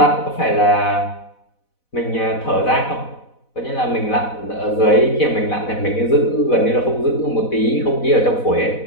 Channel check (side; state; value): right; late; 4.1 ms